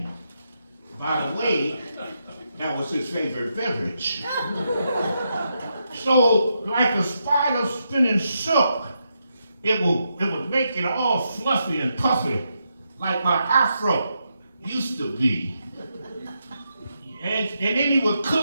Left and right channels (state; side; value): inverted; both; correlation -0.83